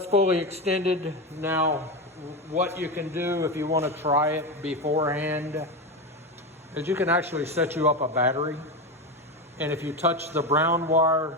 fully extended. Now, what you can do if you want to try it beforehand is you can actually set you up a battery. And if you touch the brown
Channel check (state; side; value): normal; both; correlation 0.17